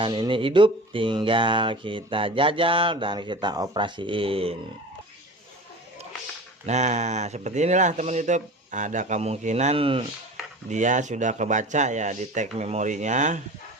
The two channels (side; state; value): both; normal; correlation 0.35